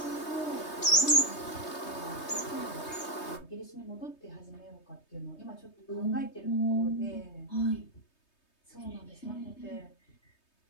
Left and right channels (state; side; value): late; right; 3.2 ms